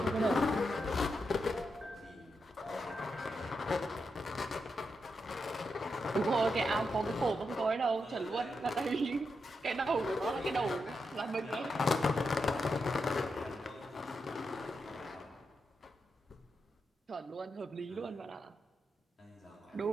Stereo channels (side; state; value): both; normal; correlation 0.85